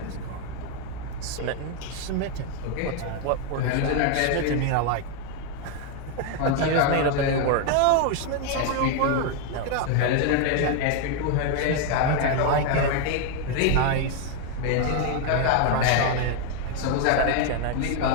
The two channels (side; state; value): both; different; correlation 0.01